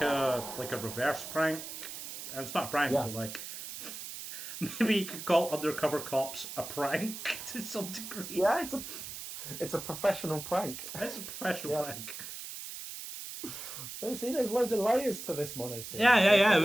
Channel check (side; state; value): right; noise; hiss, 9 dB below the sound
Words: a reverse prank. And it's not a prank, Yeah, but like maybe you could call undercover cops a prank to some degree. yeah. It's a professional prank. It's a professional Yeah. prank. You see, there's loads of layers to this mono scene. Yeah. It